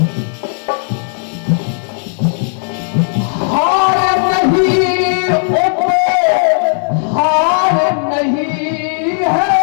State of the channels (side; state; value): right; silent; digital silence